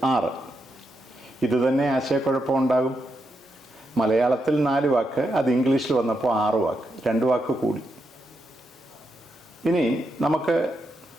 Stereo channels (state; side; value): normal; both; correlation 0.83